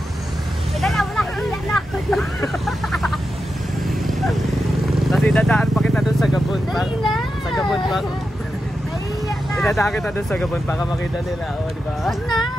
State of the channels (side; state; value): both; normal; correlation 0.89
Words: Dala, wala kang na ako. Tapos idadaan pa kita doon sa Gabon. Dali na. Sa Gabon pa. Nahiya na. Idadaan kita doon sa Gabon para makita nila. O, di ba? Wag na.